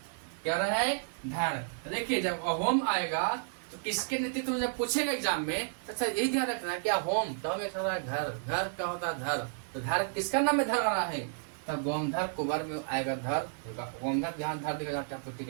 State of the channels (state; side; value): silent; left; 56 dB below the other